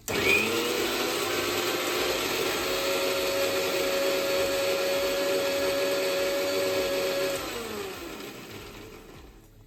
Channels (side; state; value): both; identical; correlation 1.00